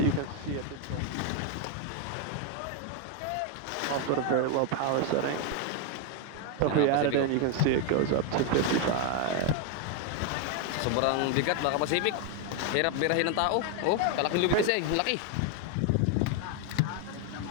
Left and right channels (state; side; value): different; both; correlation 0.01